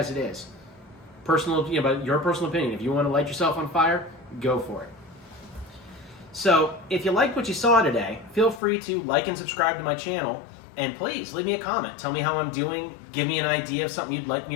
it is. But your personal opinion. If you want to light yourself on fire, go for it. So if you liked what you saw today, feel free to like and subscribe to my channel. And please leave me a comment. Tell me how I'm doing. Give me an idea of something you'd like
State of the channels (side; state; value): right; drops out; at 8.6 s